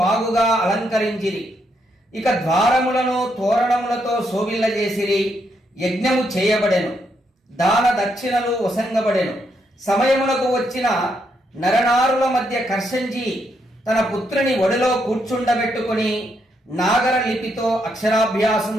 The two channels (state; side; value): normal; both; correlation 0.78